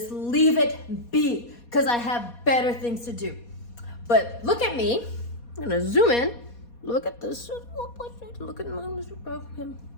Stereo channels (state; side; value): late; right; 4.2 ms